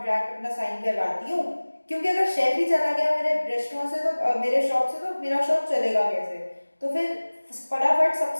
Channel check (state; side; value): inverted; both; correlation -1.00